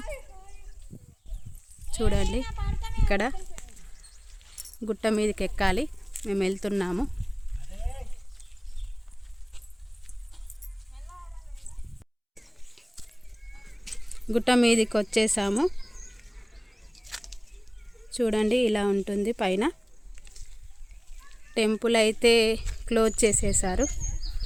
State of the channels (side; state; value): both; identical; correlation 1.00